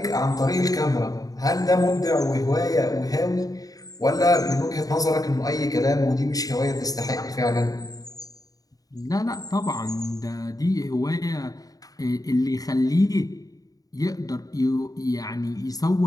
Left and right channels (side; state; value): right; late; 0.18 ms